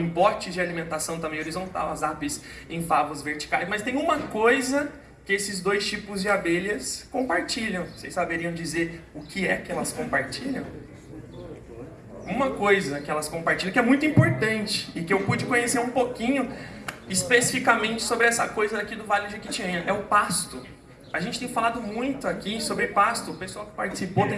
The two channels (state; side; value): identical; both; correlation 1.00